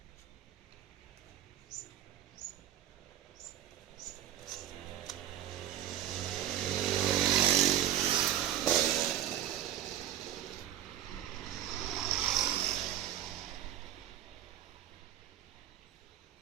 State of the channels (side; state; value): left; quieter; 11.7 dB